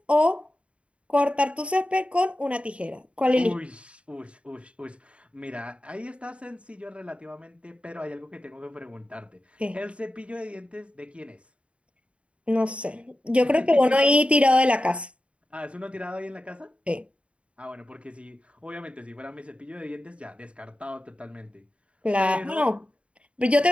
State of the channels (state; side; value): late; left; 0.061 ms